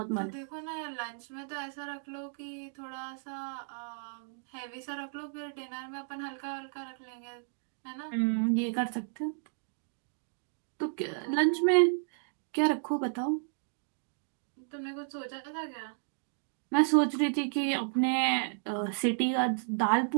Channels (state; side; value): silent; left; digital silence